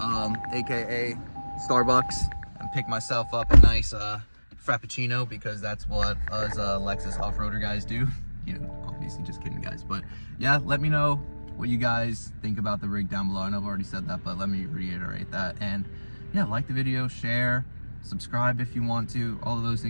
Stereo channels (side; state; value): both; inverted; correlation -1.00